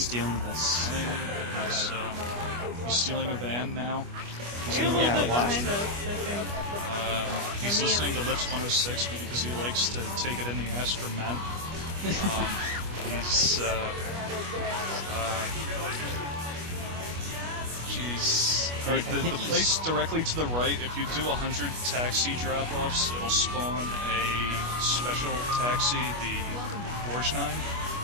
this? running, he's stealing a van now. He's in the Yeah, red light why? district. He's listening to Lips 106 because he likes to take it in the ass from men. He's Jeez. Alright, the place directly to the right, if you do 100 taxi drop-offs, it'll spawn a special taxi, the Borgnine.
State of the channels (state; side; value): late; left; 25 ms